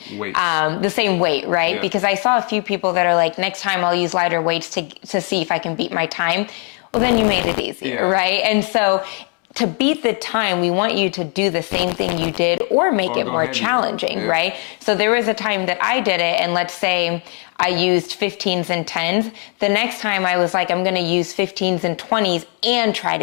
weight, right? Yeah. Because I saw a few people that are like, next time I'll use lighter weights to see if I can beat my time. Well, then you made it easy, right? And so to beat the time, we want you to do the same thing you did or make it more challenging, right? So there was a time that I did it, and let's say I used 15s and 10s. The next time I was like, I'm going to use 15s and 20s and try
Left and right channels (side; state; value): right; quieter; 37.8 dB